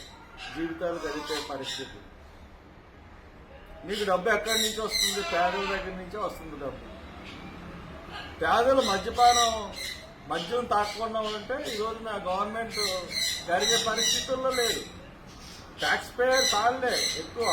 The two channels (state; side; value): identical; both; correlation 1.00